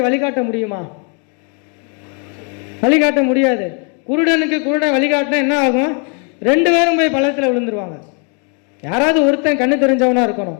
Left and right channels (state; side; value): quieter; right; 38.5 dB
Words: வழிகாட்ட முடியுமா? வழிகாட்ட முடியாது. குருடனுக்கு குருடன் வழிகாட்டினா என்ன ஆகும்? ரெண்டு பேரும் போய் பள்ளத்தில் விழுந்துருவாங்க. யாராவது ஒருத்தன் கண்ணு தெரிஞ்சவனா